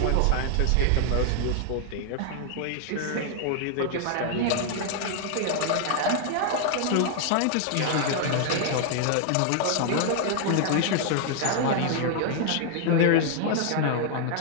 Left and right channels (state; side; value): different; both; correlation 0.00